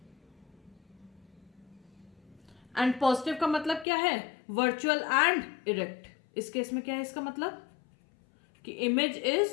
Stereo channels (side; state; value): right; drops out; at 3.9 s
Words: एंड पॉजिटिव का मतलब क्या है, वर्चुअल एंड इरेक्ट। इस केस में क्या है इसका मतलब कि image is